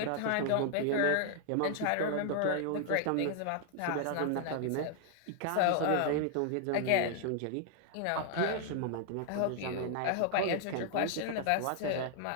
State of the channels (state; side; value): different; both; correlation 0.00